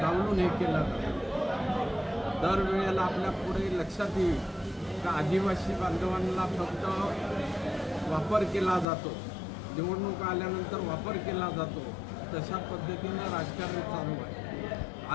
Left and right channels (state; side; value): drops out; right; at 8.8 s